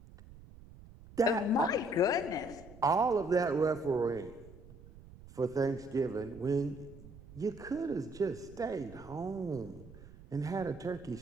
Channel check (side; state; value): right; noise; rumble, 19 dB below the sound